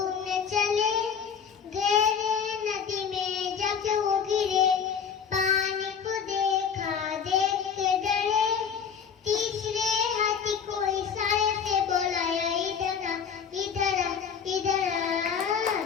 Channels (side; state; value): right; quieter; 7.0 dB